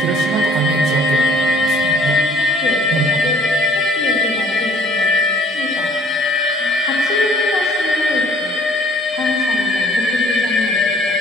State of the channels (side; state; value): both; normal; correlation 0.57